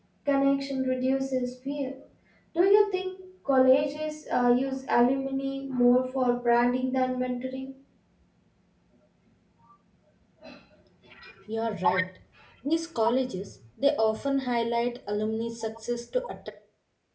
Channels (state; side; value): identical; both; correlation 1.00